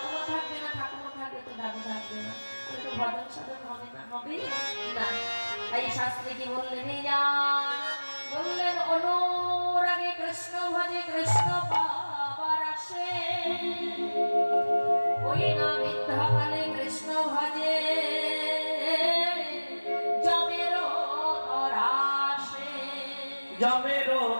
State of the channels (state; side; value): inverted; both; correlation -1.00